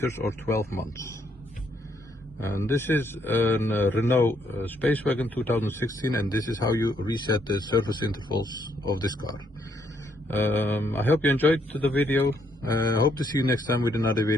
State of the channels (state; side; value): normal; both; correlation 0.72